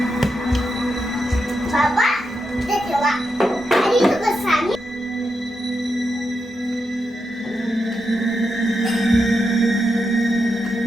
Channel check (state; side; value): normal; both; correlation 0.86